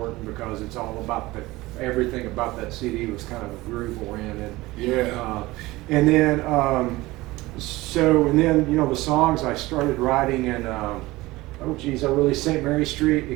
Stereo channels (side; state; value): left; quieter; 19.6 dB